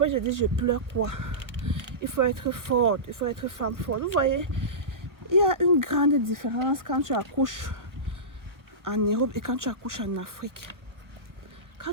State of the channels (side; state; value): left; late; 1.0 ms